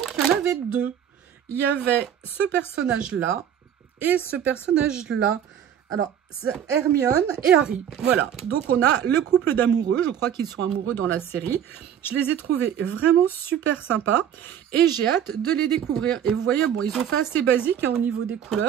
il y en avait deux. Il y avait ce personnage-là. Et ce personnage-là, alors, c'est Hermione et Harry. Voilà, donc on a le couple d'amoureux. Je crois qu'ils sont amoureux dans la série. Je les ai trouvés vraiment super sympas. Et j'ai hâte de les découvrir. Et vous voyez, bon, ils ont fait assez basique hein, au niveau des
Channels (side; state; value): left; quieter; 9.3 dB